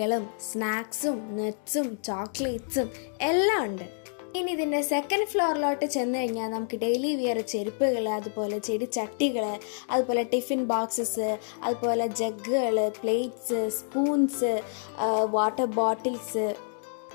സ്നാക്സും, നട്ട്സും, ചോക്ലേറ്റ്സും എല്ലാം ഉണ്ട്. ഇനി ഇതിൻ്റെ സെക്കൻഡ് ഫ്ലോറിലോട്ട് ചെന്ന് കഴിഞ്ഞാൽ നമുക്ക് ഡെയിലി വിയർ ചെരുപ്പുകൾ, അതുപോലെ ചെടിച്ചട്ടികൾ, അതുപോലെ ടിഫിൻ ബോക്സസ്, അതുപോലെ ജഗ്ഗുകൾ, പ്ലേറ്റ്സ്, സ്പൂൺസ്, വാട്ടർ ബോട്ടിൽസ്,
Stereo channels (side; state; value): right; silent; digital silence